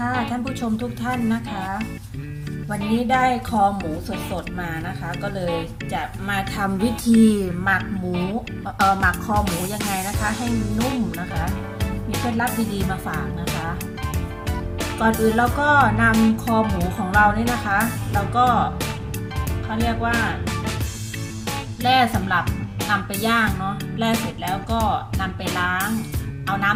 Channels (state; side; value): identical; both; correlation 1.00